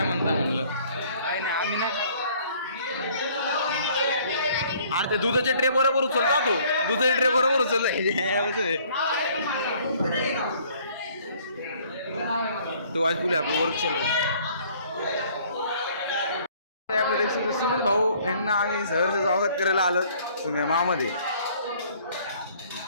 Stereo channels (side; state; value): both; inverted; correlation -0.58